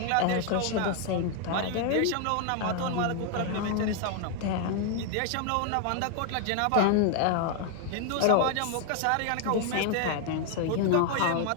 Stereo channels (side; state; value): both; different; correlation 0.00